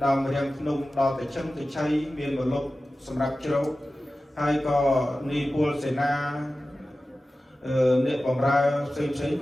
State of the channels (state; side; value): normal; both; correlation 0.95